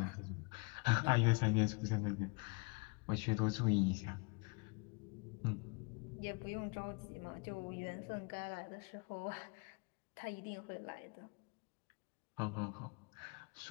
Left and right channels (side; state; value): right; quieter; 31.3 dB